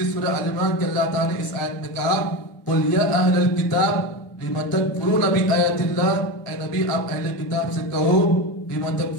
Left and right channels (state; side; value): normal; both; correlation 0.21